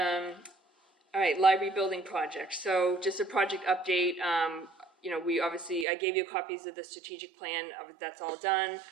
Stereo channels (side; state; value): left; drops out; at 5.9 s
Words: All right, library building project. So just a project update. you know, we obviously, I gave you copies of the strategic plan, that's all done.